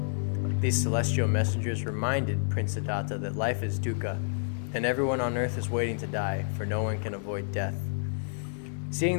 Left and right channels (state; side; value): silent; right; digital silence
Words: These celestial messengers reminded Prince Siddhartha that life is dukkha, and everyone on earth is waiting to die, for no one can avoid death.